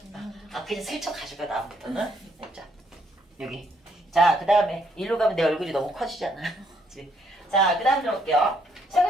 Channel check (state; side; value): normal; both; correlation 0.71